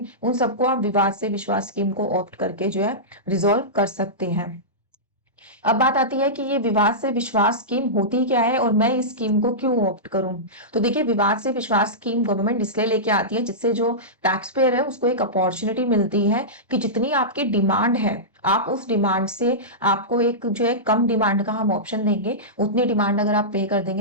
उन सबको आप विवाद से विश्वास स्कीम को ऑप्ट करके जो है रिजॉल्व कर सकते हैं। अब बात आती है कि ये विवाद से विश्वास स्कीम होती क्या है और मैं इस स्कीम को क्यों ऑप्ट करूं। तो देखिए, विवाद से विश्वास स्कीम गवर्नमेंट इसलिए लेके आती है जिससे जो टैक्स पेयर है उसको एक अपॉर्चुनिटी मिलती है कि जितनी आपकी डिमांड है आप उस डिमांड से, आपको एक जो है कम डिमांड का हम ऑप्शन देंगे, उतनी डिमांड अगर आप पे कर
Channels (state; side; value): normal; both; correlation -0.16